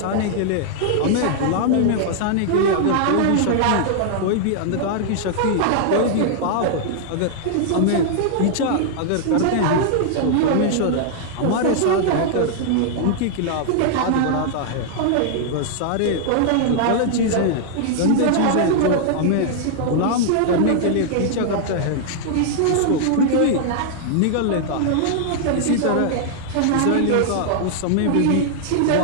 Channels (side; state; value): both; different; correlation -0.01